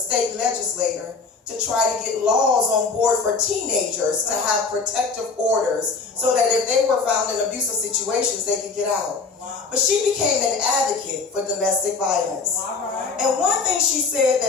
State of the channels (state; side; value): quieter; right; 4.5 dB